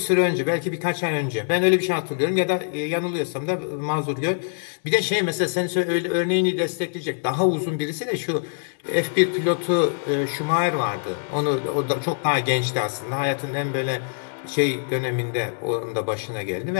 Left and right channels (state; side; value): silent; right; digital silence